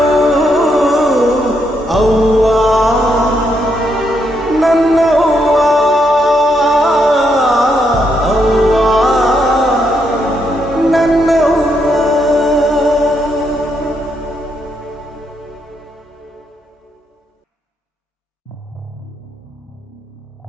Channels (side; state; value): both; normal; correlation 0.78